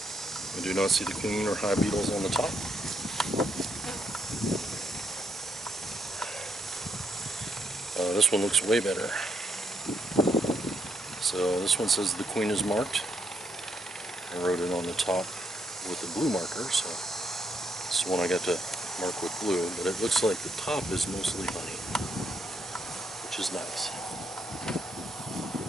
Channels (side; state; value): both; normal; correlation 0.76